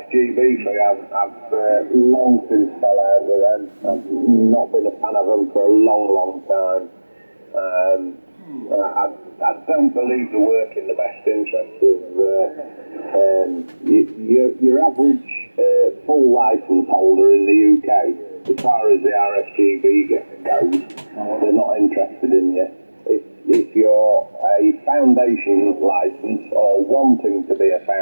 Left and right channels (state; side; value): inverted; both; correlation -1.00